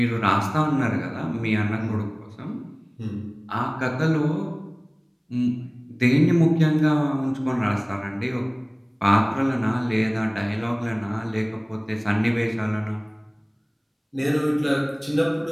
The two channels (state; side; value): identical; both; correlation 1.00